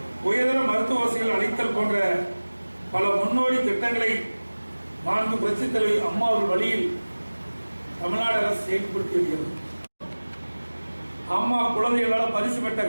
உயர்தர மருத்துவ வசதிகள் அளித்தல் போன்ற பல முன்னோடி திட்டங்களை மாண்பு புரட்சித் தலைவி அம்மா அவர்கள் வழியில் தமிழ்நாடு அரசு செயல்படுத்தி வருகிறது. அம்மா குழந்தைகளால் பரிசு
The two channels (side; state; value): both; inverted; correlation -1.00